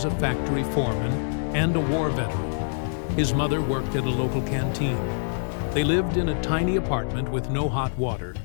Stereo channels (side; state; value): right; silent; digital silence